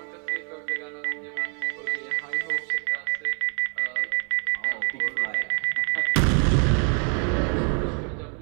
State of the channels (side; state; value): left; quieter; 38.8 dB